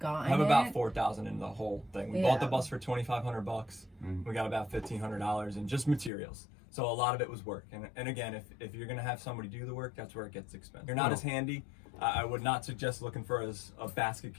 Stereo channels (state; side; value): drops out; right; at 6.1 s